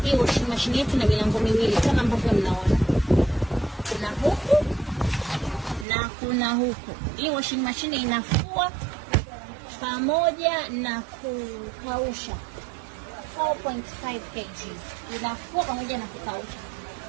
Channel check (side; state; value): left; drops out; at 5.9 s